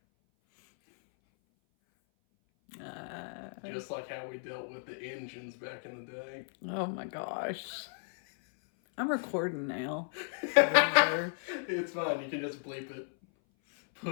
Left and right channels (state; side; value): silent; right; 55 dB below the other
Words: Just like how we dealt with the engines back in the day. Oh my gosh. I'm recording now. It's fine. You can just bleep it.